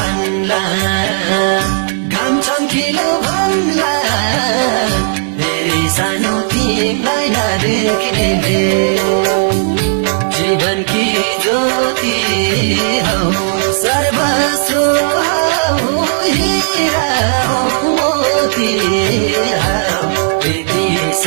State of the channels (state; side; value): silent; left; digital silence